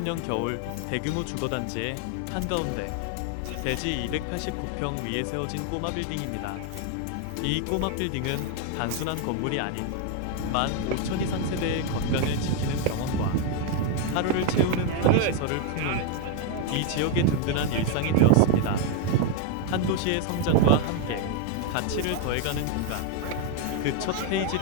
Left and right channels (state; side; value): different; both; correlation 0.01